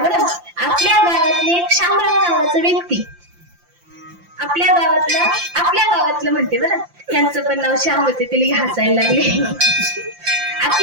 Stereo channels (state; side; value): late; left; 5.8 ms